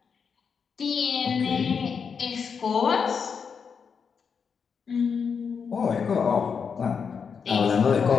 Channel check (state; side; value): quieter; right; 6.2 dB